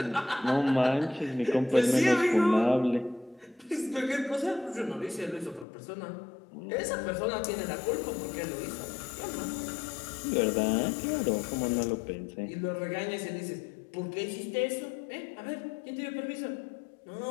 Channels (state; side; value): drops out; right; at 5.7 s